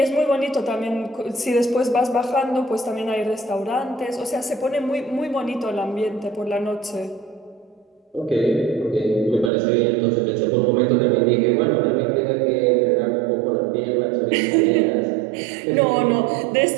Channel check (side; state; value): left; drops out; at 9.5 s